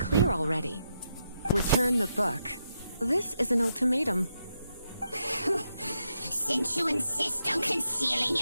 already. Return the book. This is an ultimatum. Since you insist on concealing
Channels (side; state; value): both; inverted; correlation -0.83